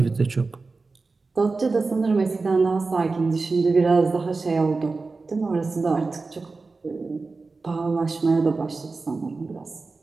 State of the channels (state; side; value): quieter; left; 3.9 dB